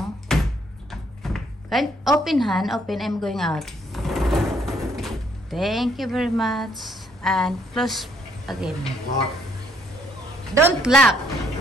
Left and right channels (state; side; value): normal; both; correlation 0.68